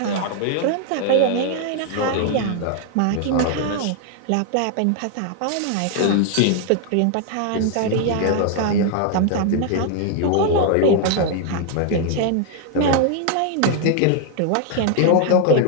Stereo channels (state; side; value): different; both; correlation 0.00